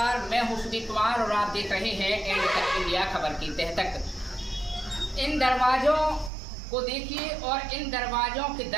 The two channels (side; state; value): left; drops out; at 6.3 s